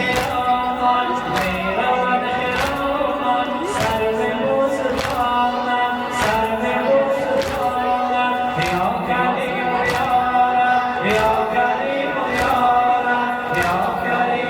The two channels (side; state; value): both; identical; correlation 1.00